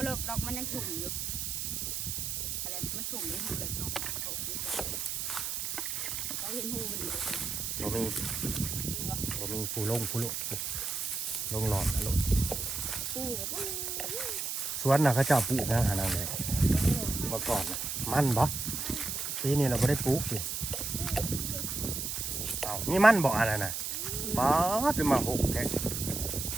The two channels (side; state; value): right; noise; hiss, 3 dB below the sound